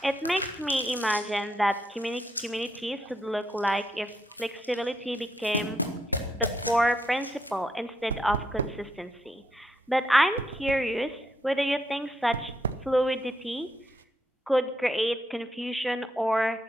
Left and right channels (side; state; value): both; normal; correlation 0.77